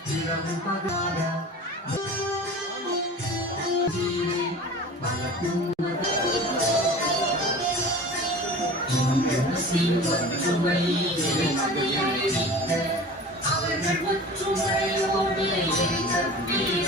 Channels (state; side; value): normal; both; correlation 0.38